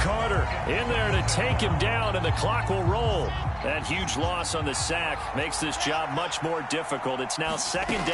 in there to take him down, and the clock will roll. That huge loss on the sack makes this job much more difficult. It's now second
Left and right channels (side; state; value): both; identical; correlation 1.00